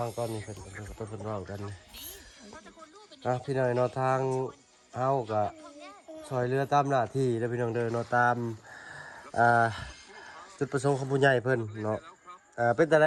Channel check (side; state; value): both; identical; correlation 1.00